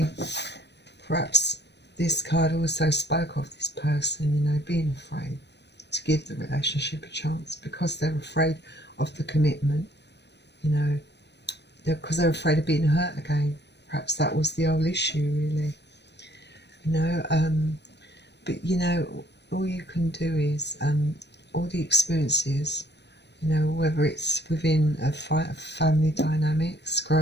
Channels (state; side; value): late; right; 0.50 ms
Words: perhaps this card also spoke of this person, you know, being afraid to give the relationship a chance because they're afraid of the commitment, you know, because they're afraid of being hurt again. Perhaps that was the whole issue, really, you know. But, you know, all you can do is all the experiences, you know, whether it's within a family dynamics,